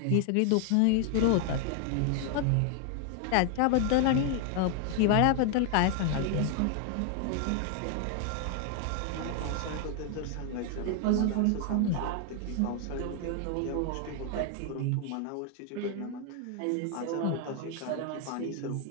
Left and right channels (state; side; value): different; both; correlation 0.00